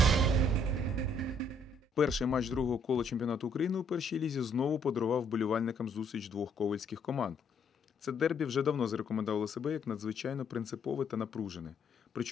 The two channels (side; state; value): both; normal; correlation 0.68